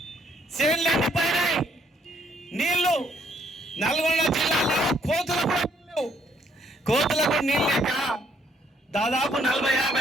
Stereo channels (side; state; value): both; normal; correlation 0.69